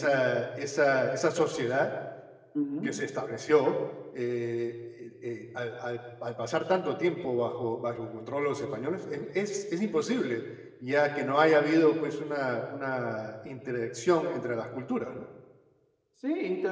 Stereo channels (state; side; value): identical; both; correlation 1.00